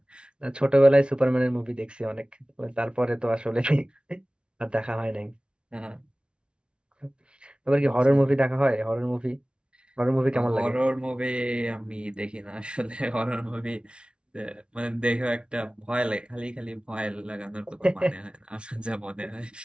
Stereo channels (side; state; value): left; late; 0.057 ms